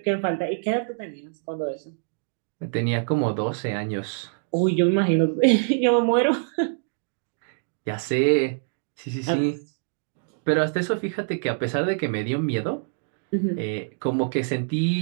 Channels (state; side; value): silent; left; digital silence